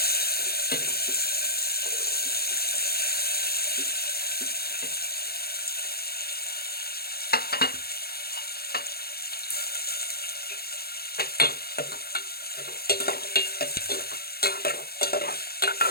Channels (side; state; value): right; late; 0.45 ms